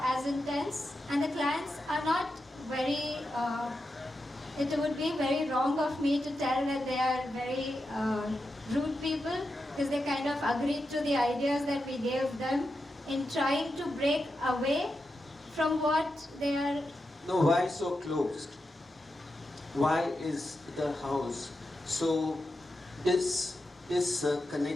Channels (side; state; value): both; normal; correlation 0.88